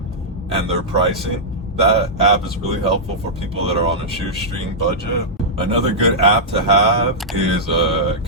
and their pricing. That app is really helpful for people that are on a shoestring budget. Another good app to have is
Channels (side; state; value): both; normal; correlation -0.10